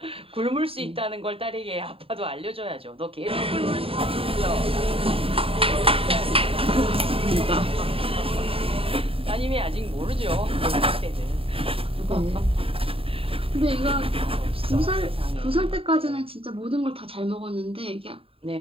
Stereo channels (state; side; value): late; left; 0.27 ms